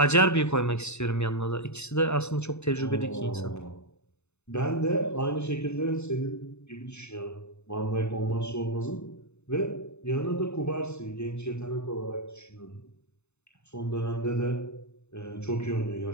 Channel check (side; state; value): right; late; 0.81 ms